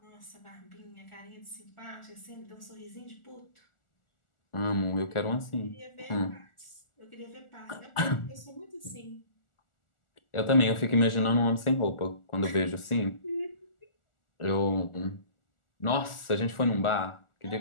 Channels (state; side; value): late; right; 1.4 ms